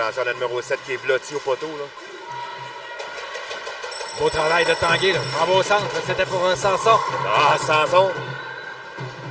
à la numéro 7 qui est blotti au poteau. Là. Beau travail de Tanguay. Là. En bas au centre, c'était pour Sanson. Ah, Sanson.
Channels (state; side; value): identical; both; correlation 1.00